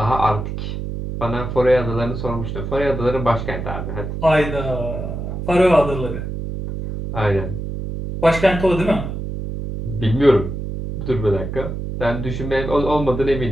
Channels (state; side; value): noise; right; hum, 5 dB below the sound